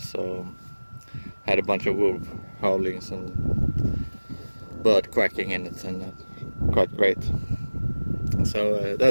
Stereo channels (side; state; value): both; inverted; correlation -1.00